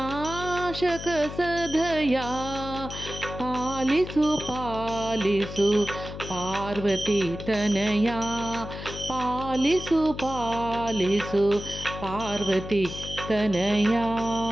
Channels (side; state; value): left; noise; hum, 10 dB below the sound